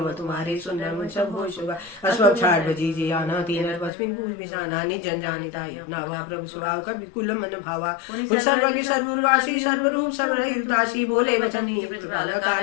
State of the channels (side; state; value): right; drops out; at 3.9 s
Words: तुम्हारे सुंदर मन सब होय शोभा अस्वब छाड़ बजी जे आना तीन पश्चिम पूज बिसाना निज जन जानिताय नावा प्रभु स्वभाव का विकुल मन भावा सर्वज्ञ सर्ववासी सर्वरूप सर्वरहित दासी बोले वचन